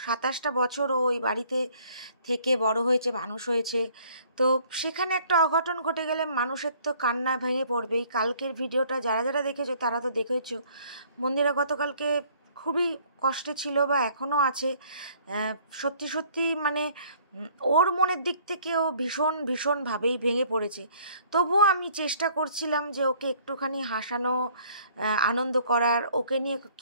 27টা বছর ও ওই বাড়িতে থেকে বড় হয়েছে, মানুষ হয়েছে। তো সেখানে একটা অঘটন ঘটে গেলে মানুষের তো কান্না ভেঙে পড়বেই। কালকের ভিডিওটা যারা যারা দেখেছো তারা তো দেখেছো মন্দিরা গতকালকে খুবই কষ্টে ছিল বা এখনও আছে। সত্যি সত্যি মানে ওর মনের দিক থেকে ও ভীষণভাবেই ভেঙে পড়েছে। তবুও আমি চেষ্টা করছিলাম যে ওকে একটুখানি হাসানো, আনন্দ করার। ওকে নিয়ে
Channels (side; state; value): both; inverted; correlation -0.58